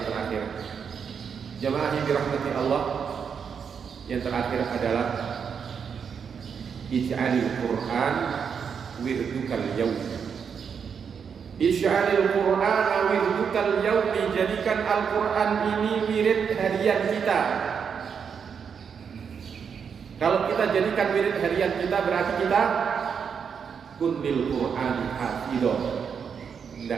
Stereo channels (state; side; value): quieter; left; 6.8 dB